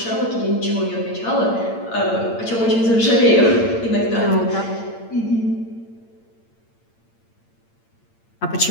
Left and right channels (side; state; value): right; late; 8.8 ms